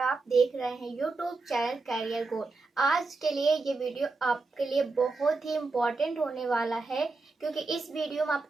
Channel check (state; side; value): quieter; left; 3.7 dB